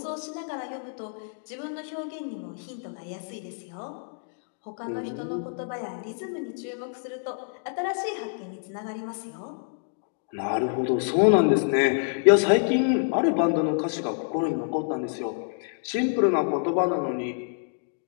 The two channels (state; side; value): silent; right; digital silence